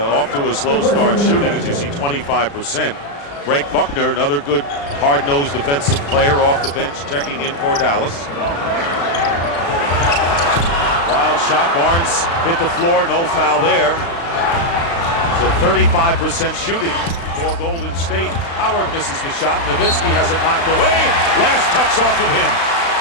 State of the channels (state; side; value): late; right; 35 ms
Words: to a slow start shooting, as you see, 25%. Greg Buckner, another good hard-nosed defensive player off the bench, checking in for Dallas. Wild shot, Barnes hit the floor, no foul there. So 35% shooting for Golden State. Howard misses the shot. Nowitzki has it knocked away. Last touch off of him.